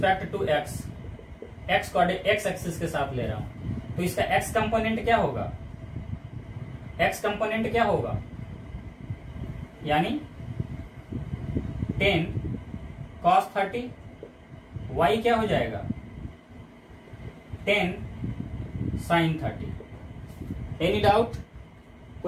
to x, x axis के साथ ले रहा हूं। तो इसका एक्स कंपोनेंट क्या होगा, एक्स कंपोनेंट क्या होगा, यानी 10 cos 30, y क्या हो जाएगा 10 sin 30। एनी डाउट,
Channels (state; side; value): identical; both; correlation 1.00